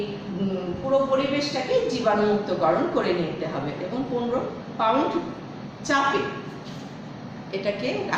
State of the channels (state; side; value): identical; both; correlation 1.00